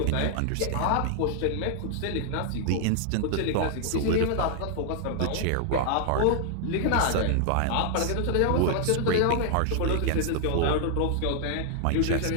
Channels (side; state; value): both; different; correlation 0.00